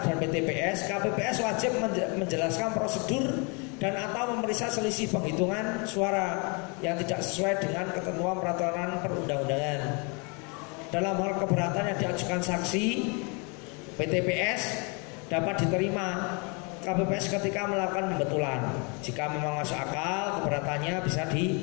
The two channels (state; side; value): quieter; right; 33.0 dB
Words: dan PTPS, KPPS wajib menjelaskan prosedur dan atau memeriksa selisih penghitungan suara yang tidak sesuai dengan ketentuan peraturan perundang-undangan. Dalam hal keberatan yang diajukan saksi, PTPS dapat diterima KPPS ketika melakukan pembetulan. Jika memang masuk akal, keberatannya bisa